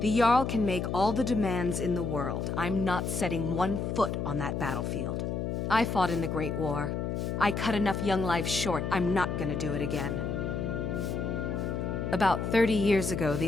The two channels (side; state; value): left; noise; hum, 2 dB below the sound